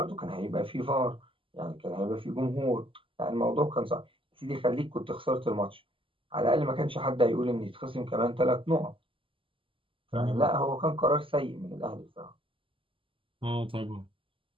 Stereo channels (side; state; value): left; late; 0.25 ms